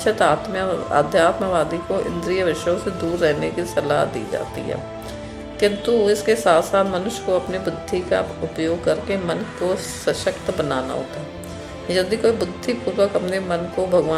अध्यात्मवादी को इंद्रिय विषयों से दूर रहने की सलाह दी जाती है। किंतु इसके साथ साथ मनुष्य को अपनी बुद्धि का उपयोग करके मन को सशक्त बनाना होता है। यदि कोई बुद्धिपूर्वक अपने मन को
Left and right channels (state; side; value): identical; both; correlation 1.00